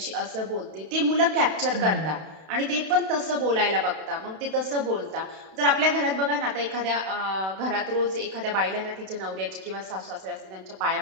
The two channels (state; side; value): late; left; 32 ms